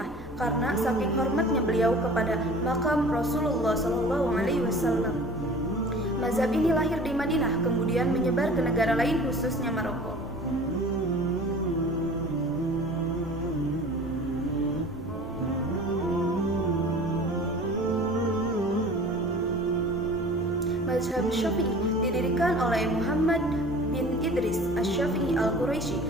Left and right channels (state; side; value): normal; both; correlation 0.43